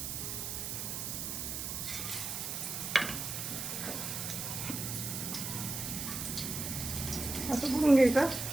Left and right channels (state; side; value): noise; right; hiss, 4 dB below the sound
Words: असं बुडवून घ्यायचं,